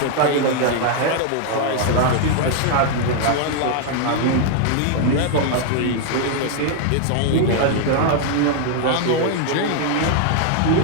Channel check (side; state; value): both; different; correlation 0.00